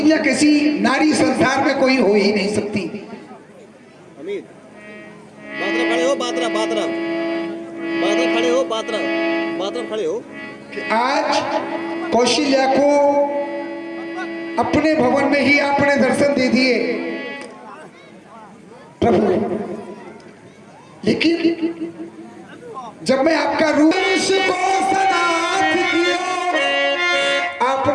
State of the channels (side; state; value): both; identical; correlation 1.00